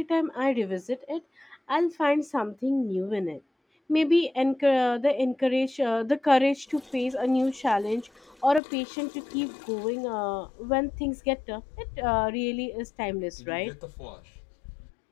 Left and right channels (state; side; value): drops out; right; at 8.6 s